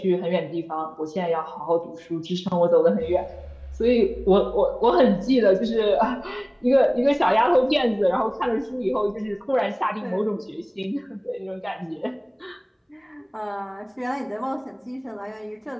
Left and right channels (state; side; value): identical; both; correlation 1.00